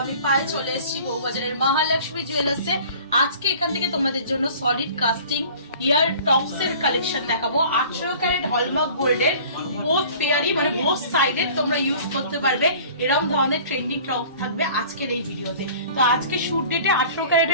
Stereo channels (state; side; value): inverted; both; correlation -0.46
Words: আমি পায়ে চলে এসেছি বউবাজারের মহালক্ষ্মী জুয়েলার্সে। আজকে এখান থেকে তোমাদের জন্য সলিড কাস্টিং ইয়ার টপস এর কালেকশন দেখাবো। 18 ক্যারেট হলমার্ক গোল্ডের বোথ পেয়ারই মানে বোথ সাইডে তোমরা ইউজ করতে পারবে। এরকম ধরনের ট্রেন্ডিং টপস থাকবে আজকের এই ভিডিওতে। তো আজকে শুট ডেটে 18